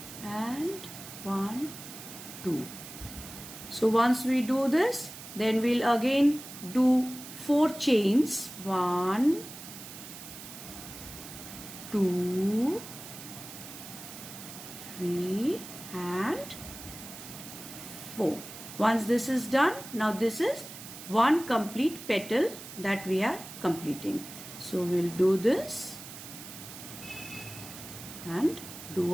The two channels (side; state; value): right; noise; hiss, 13 dB below the sound